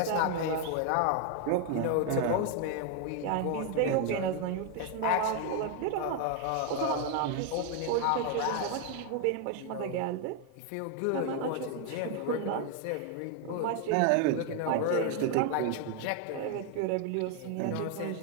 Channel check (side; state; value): both; different; correlation 0.01